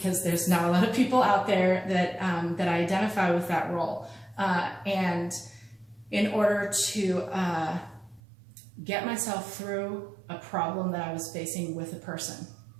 there's not a lot of people out there that identify with that role. And in order to get myself through a problem that I was facing with a person,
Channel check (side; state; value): left; drops out; at 8.2 s